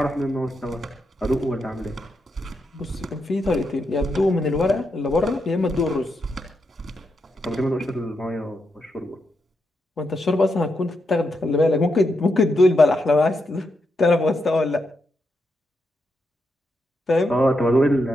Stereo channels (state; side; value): normal; both; correlation 0.83